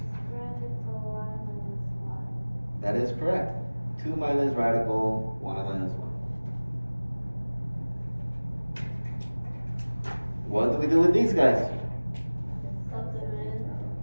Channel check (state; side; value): inverted; both; correlation -1.00